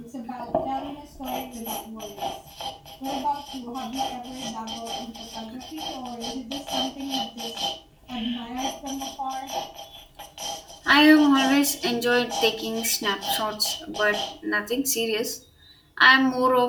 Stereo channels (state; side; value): identical; both; correlation 1.00